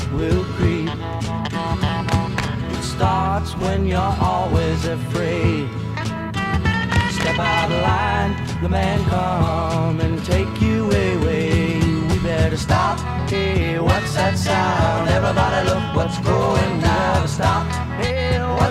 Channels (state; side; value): identical; both; correlation 1.00